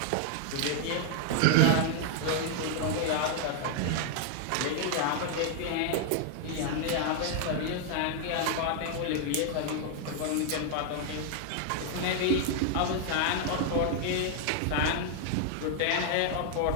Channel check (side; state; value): both; different; correlation 0.00